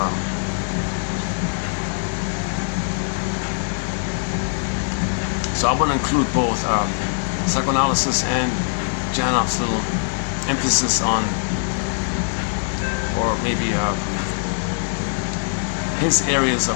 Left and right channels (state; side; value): silent; right; digital silence